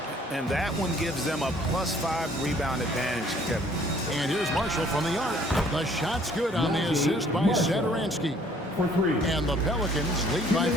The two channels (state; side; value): normal; both; correlation 0.59